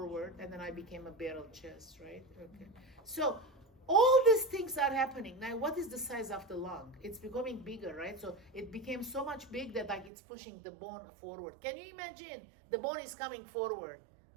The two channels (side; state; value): left; drops out; at 10.1 s